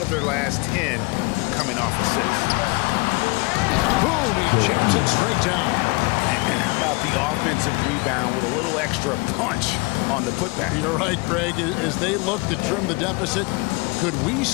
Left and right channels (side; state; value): right; quieter; 27.7 dB